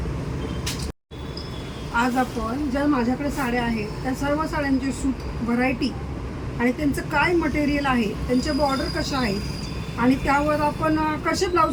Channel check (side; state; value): both; identical; correlation 1.00